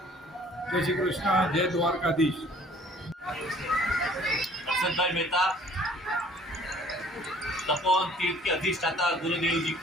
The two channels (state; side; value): normal; both; correlation 0.55